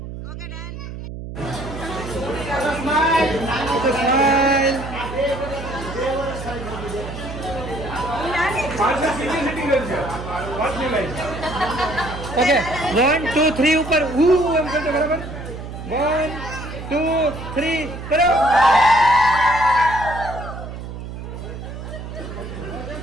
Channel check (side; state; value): right; noise; hum, 9 dB below the sound